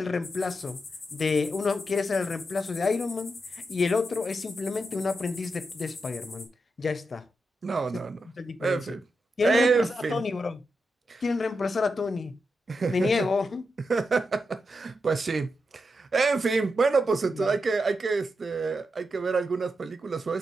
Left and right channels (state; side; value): normal; both; correlation 0.86